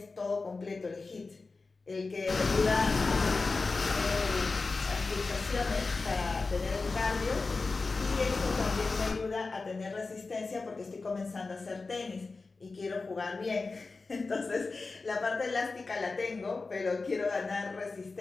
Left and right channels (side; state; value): right; quieter; 3.9 dB